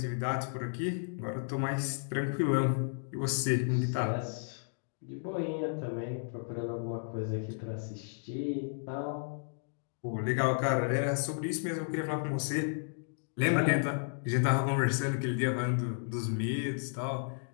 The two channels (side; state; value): right; silent; digital silence